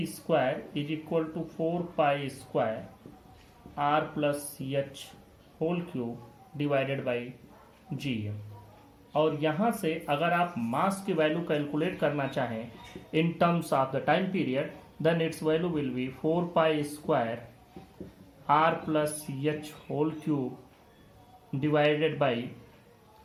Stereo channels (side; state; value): both; identical; correlation 1.00